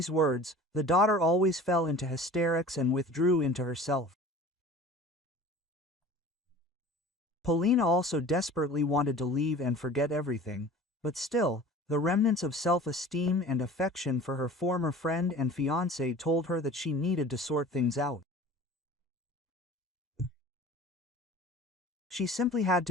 words, the daughter always fell into hysterics and withdrew into herself. Polina also desperately wanted to leave and forget everything, but still, the remnants of self-esteem and affection for her former friend and fiancé told her that she needed to sort things out. She simply had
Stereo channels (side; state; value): both; normal; correlation 0.42